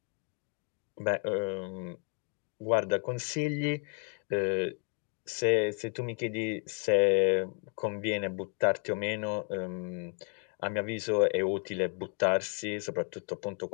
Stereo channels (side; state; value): right; quieter; 38.1 dB